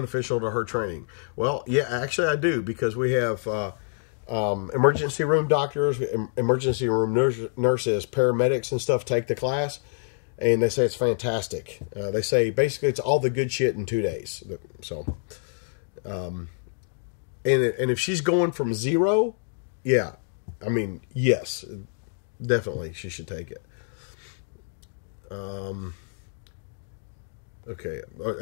to her training? Well, yeah, actually I do, because we have emergency room doctors, emergency room nurses, paramedics and stuff take the class. And they say it's fantastic. They say basically it's all the good shit in 2 days. So, and if she's going from zero, yeah, I mean, yes, definitely she should take it. Okay,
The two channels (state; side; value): silent; right; digital silence